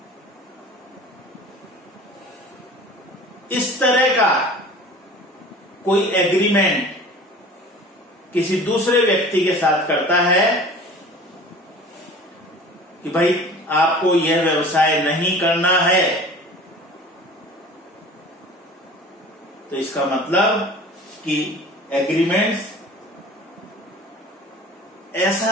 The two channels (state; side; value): normal; both; correlation 0.42